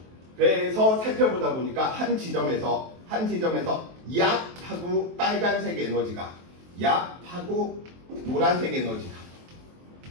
그래서 살펴보다 보니까 한 지점에서 약하고 빨간색 에너지가, 약하고 노란색 에너지가.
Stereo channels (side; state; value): left; late; 23 ms